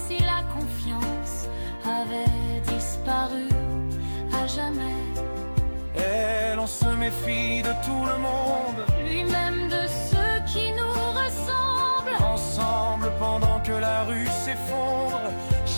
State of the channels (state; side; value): inverted; both; correlation -1.00